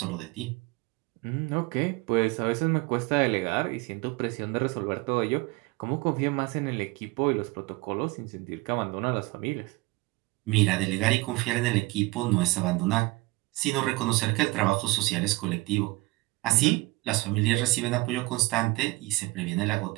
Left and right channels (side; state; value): left; quieter; 22.5 dB